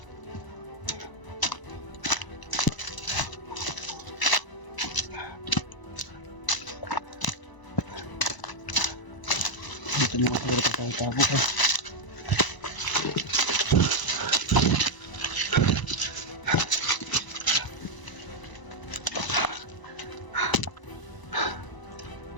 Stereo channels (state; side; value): late; right; 1.0 ms